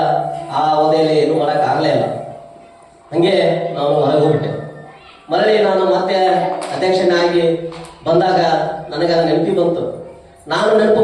ಆ ಅವಧಿಯಲ್ಲಿ ಏನು ಮಾಡಕ್ ಆಗ್ಲೇ ಇಲ್ಲ. ಹಂಗೆ ನಾನು ಹೊರಗೆ ಹೋಗ್ಬಿಟ್ಟೆ. ಮರಳಿ ನಾನು ಮತ್ತೆ ಅಧ್ಯಕ್ಷನಾಗಿ ಬಂದಾಗ ನನಗೆ ಅದು ನೆನಪಿ ಬಂತು. ನಾನು ನೆನಪು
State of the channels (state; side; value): identical; both; correlation 1.00